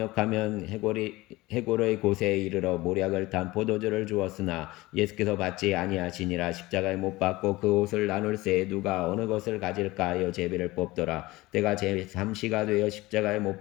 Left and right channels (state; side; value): quieter; right; 19.9 dB